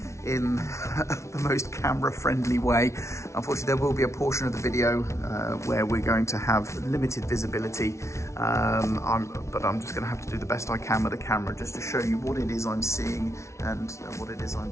in the most camera-friendly way. Unfortunately, there will be a portion of the video where we're going to have limited visibility, but I'm just going to have to do the best I can with the camera just to show you what it is I'm seeing and what it is I'm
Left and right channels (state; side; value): late; right; 0.13 ms